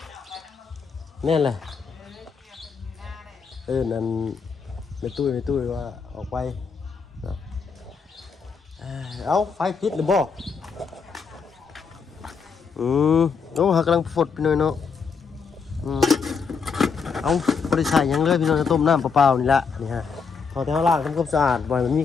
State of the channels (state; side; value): quieter; right; 5.6 dB